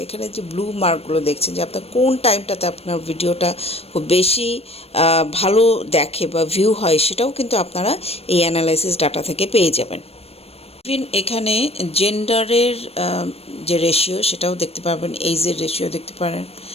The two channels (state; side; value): late; right; 0.29 ms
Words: এখানে যে ব্লু মার্কগুলো দেখছেন যে আপনার কোন টাইমটাতে আপনার ভিডিওটা খুব বেশি ভালো দেখে বা ভিউ হয়, সেটাও কিন্তু আপনারা এই অ্যানালাইসিস ডাটা থেকে পেয়ে যাবেন। ইভেন এখানে জেন্ডারের যে রেশিও সেটাও দেখতে পারবেন, এইজের রেশিও দেখতে পারেন,